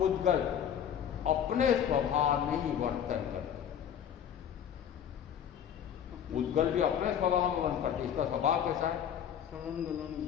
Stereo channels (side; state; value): right; quieter; 9.0 dB